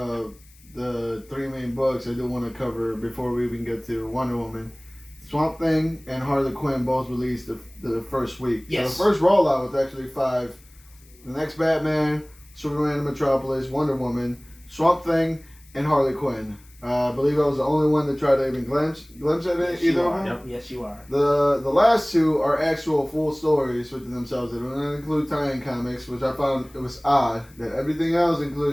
the three main books, I do want to cover before we even get to Wonder Woman. Swamp Thing and Harley Quinn both released the first week. Yes. So the first rollout was actually 5. The next Batman, Superman in Metropolis, Wonder Woman, Swamp Thing, and Harley Quinn. I believe I was the only one to try to even glimpse at it, yes, either you of are. them. Yep. Yes, you are. The last two are actual full stories within themselves. They don't include tie-in comics, which I found it was odd that everything else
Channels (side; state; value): left; noise; hiss, 28 dB below the sound